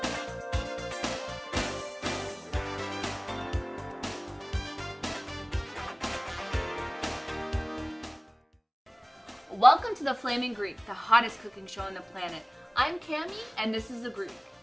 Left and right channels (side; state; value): both; identical; correlation 1.00